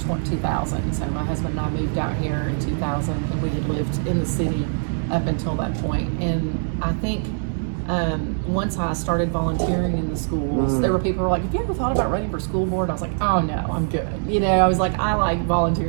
So my husband and I moved out here in 2000, and we had lived in the city up until that point. And I think once I started volunteering in the schools, there were people who were like, have you ever thought about running for school board? I was like, oh no, I'm good. I was like, I like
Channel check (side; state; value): left; silent; digital silence